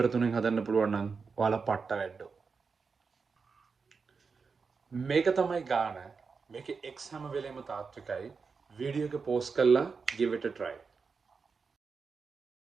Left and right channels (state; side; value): quieter; left; 5.1 dB